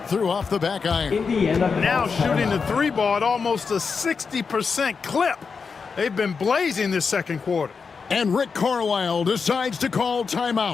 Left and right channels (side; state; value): right; quieter; 5.3 dB